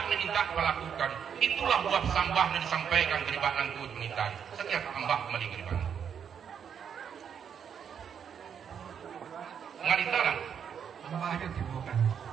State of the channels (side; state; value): left; quieter; 7.7 dB